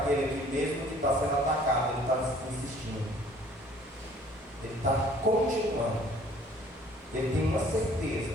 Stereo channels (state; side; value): normal; both; correlation 0.55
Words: que, mesmo que está sendo atacado, ele está insistindo, ele está continuando, ele tem uma